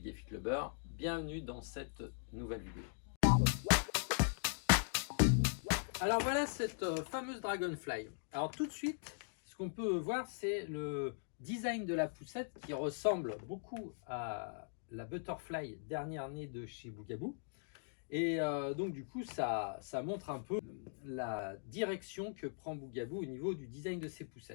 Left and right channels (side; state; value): right; silent; digital silence